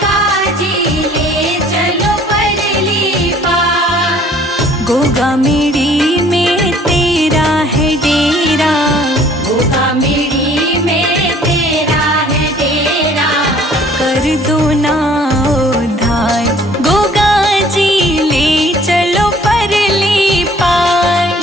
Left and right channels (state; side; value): normal; both; correlation 0.56